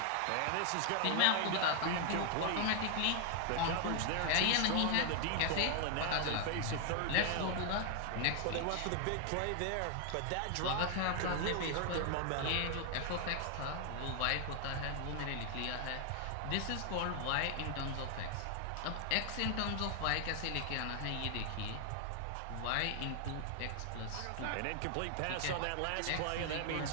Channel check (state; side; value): different; both; correlation 0.00